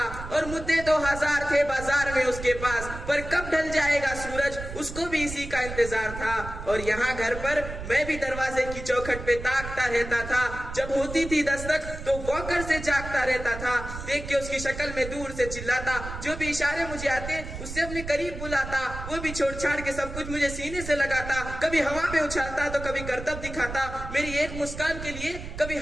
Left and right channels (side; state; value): right; noise; rumble, 9 dB below the sound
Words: और मुद्दे तो हजार थे बाजार में उसके पास, पर कब ढल जाएगा सूरज, उसको भी इसी का इंतजार था। और यहाँ घर पर मैं भी दरवाजे की चौखट पे ताकता रहता था। जब होती थी दस्तक तो वॉकर से जागता रहता था। देख के उसकी शक्ल में दूर से चिल्लाता, जो भी इशारे मुझे आते उससे अपने करीब बुलाता। वो भी छोड़ छाड़ के सब कुछ मुझे सीने से लगाता। कभी हवा में उछालता तो कभी करतब दिखाता। मेरी एक मुस्कान के लिए कभी